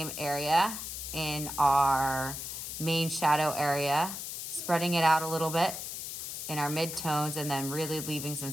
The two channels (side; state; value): left; noise; hiss, 6 dB below the sound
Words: area in our main shadow area, spreading it out a little bit in our midtones, and then really leaving some